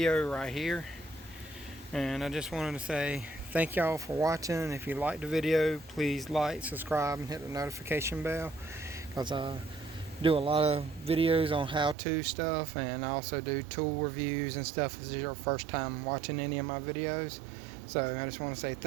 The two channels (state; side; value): drops out; left; at 12.0 s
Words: right here. And I just wanted to say thank y'all for watching. If you liked the video, please like, subscribe, and hit the notification bell, because I do a lot of videos on how-to stuff, and I also do tool reviews and stuff if this is your first time watching any of my videos. So I just want to say